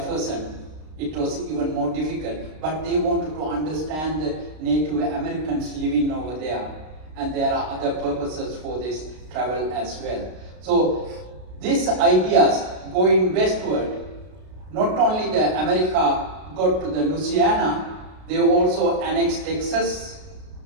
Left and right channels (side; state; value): left; late; 33 ms